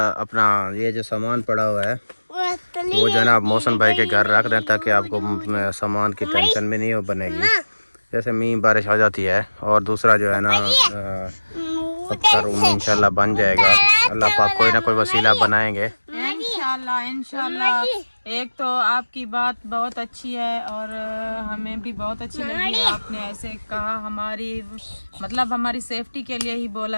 अपना ये जो सामान पड़ा हुआ है वो वो जो है ना आप मोहसिन भाई के घर रख दें ताकि आपको सामान की टेंशन भी नहीं हो बनेगी। जैसे मींह बारिश आ जाती है। और दूसरा जो है ना सबका रूम इंशाल्लाह बन जाएगा। अल्लाह पाक कोई ना कोई वसीला बनाएंगे इंशाल्लाह। एक तो आपकी बात बहुत अच्छी है और हमें भी बहुत अच्छी लगी। आपने ऐसे कहा, हमारी सेफ्टी के लिए ही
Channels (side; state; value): both; inverted; correlation -1.00